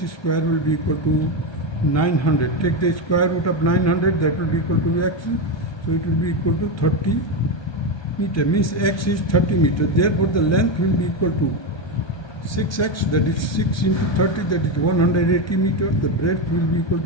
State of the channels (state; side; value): late; right; 1.2 ms